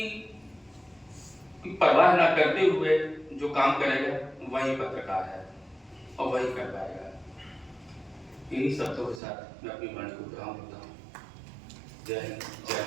परवाह ना करते हुए जो काम करेगा वही पत्रकार है और वही कर पाएगा। इन्हीं शब्दों के साथ मैं अपनी वाणी को विराम देता हूँ। जय हिंद, जय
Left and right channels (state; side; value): drops out; left; at 9.2 s